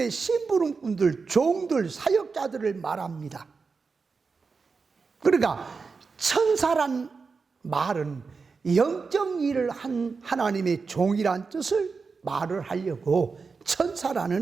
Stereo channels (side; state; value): left; quieter; 4.8 dB